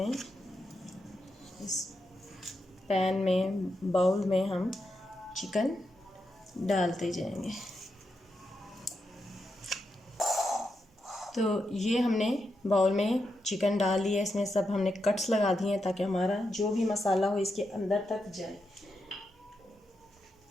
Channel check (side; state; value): both; normal; correlation 0.85